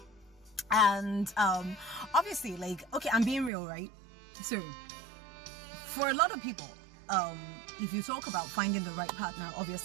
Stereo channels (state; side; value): drops out; left; at 3.5 s